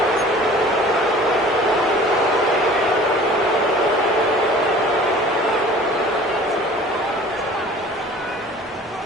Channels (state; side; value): normal; both; correlation 0.46